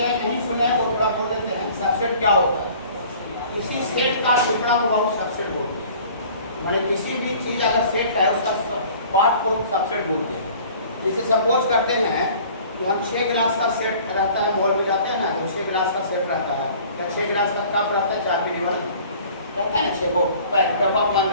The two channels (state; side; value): inverted; both; correlation -0.49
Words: नहीं सुने वो थोड़ा बोल देते हैं सबसेट क्या होता है। किसी सेट का टुकड़ा को बाबू सबसेट बोलते हैं, माने किसी भी चीज अगर सेट है उसका पार्ट को सबसेट बोलते हैं। जैसे सपोज करते हैं कि हम 6 गिलास का सेट रहता है, मॉल में जाते हैं ना तो 6 गिलास का सेट रहता है, या 6 गिलास का कप रहता है, 4 पीने वाला रहता है ना, 6 को पैक डब्बा बंद